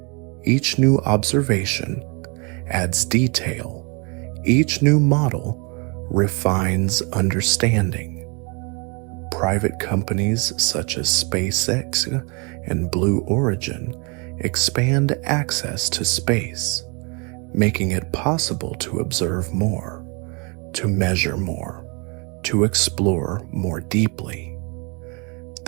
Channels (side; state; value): left; quieter; 32.0 dB